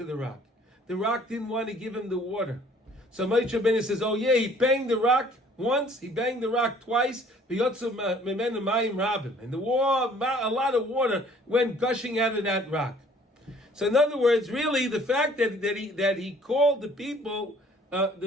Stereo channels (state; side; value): normal; both; correlation 0.56